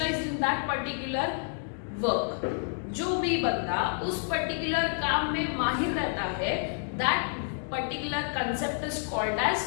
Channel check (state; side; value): silent; right; digital silence